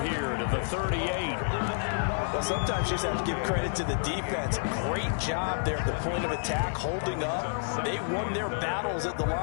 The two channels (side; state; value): right; silent; digital silence